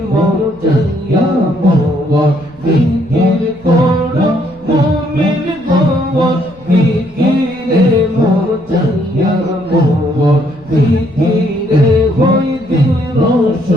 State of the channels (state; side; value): noise; left; rumble, 27 dB below the sound